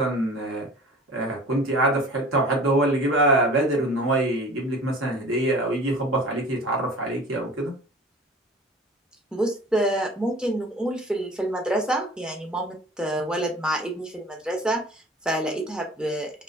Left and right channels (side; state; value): both; normal; correlation 0.44